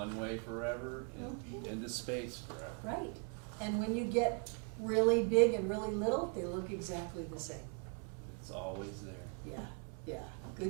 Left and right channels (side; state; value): left; quieter; 37.1 dB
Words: way forever and into space forever. Right. And when you get really big and really little, they look exactly the same. It's always there. Yeah, yeah.